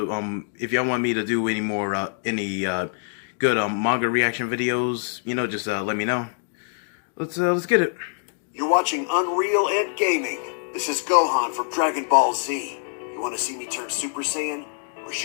if y'all want me to do any more good manga reaction videos. You know, just let me know. Let's get it. You're watching Unrealentgaming. This is Gohan from Dragon Ball Z. You want to see me turn Super Saiyan, or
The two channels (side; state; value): right; silent; digital silence